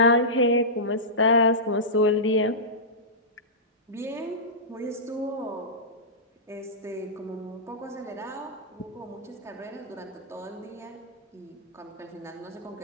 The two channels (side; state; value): both; normal; correlation -0.16